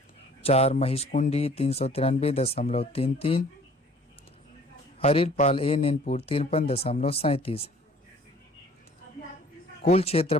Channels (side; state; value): both; normal; correlation 0.53